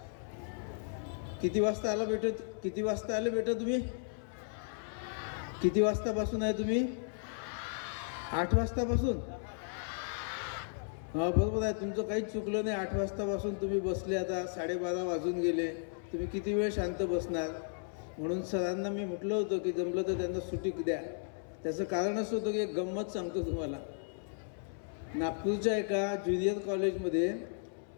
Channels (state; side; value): silent; right; 55 dB below the other